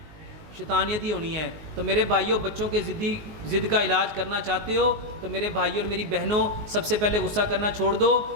شیطانیت ہی ہونی ہے۔ تو میرے بھائیوں، بچوں کے ضد کا علاج کرنا چاہتے ہو تو میرے بھائیوں اور میری بہنوں، سب سے پہلے غصہ کرنا چھوڑ دو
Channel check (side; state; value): left; late; 19 ms